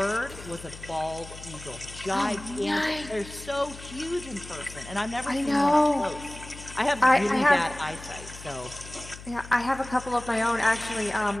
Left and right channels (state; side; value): noise; left; hum, 15 dB below the sound